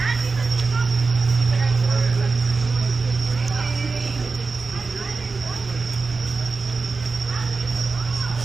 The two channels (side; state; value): left; quieter; 4.2 dB